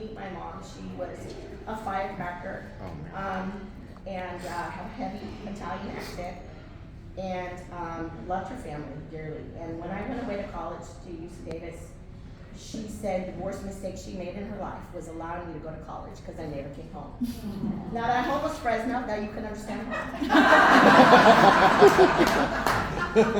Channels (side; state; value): both; identical; correlation 1.00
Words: my mom, she was a firecracker, and had a heavy Italian accent, and loved her family dearly. And when I went away to college to UC Davis, she said the worst mistake she made in her life was allowing me to go to college because I never came home. Now that I'm almost Fresno, now you can understand why.